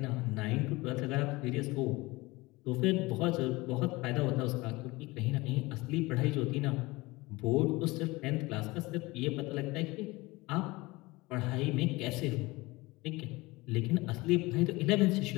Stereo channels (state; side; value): quieter; right; 22.1 dB